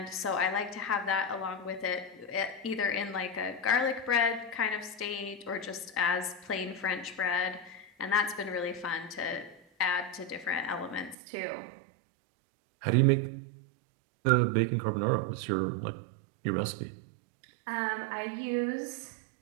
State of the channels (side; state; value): left; drops out; at 11.2 s